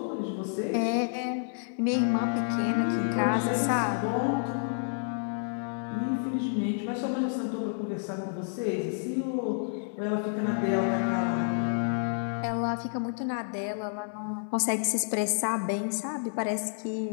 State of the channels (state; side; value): silent; right; 58 dB below the other